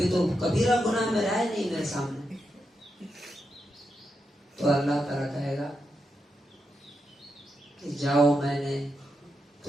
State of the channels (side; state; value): both; normal; correlation 0.85